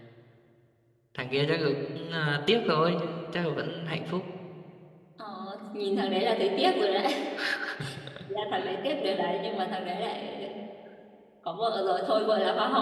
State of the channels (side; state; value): both; identical; correlation 1.00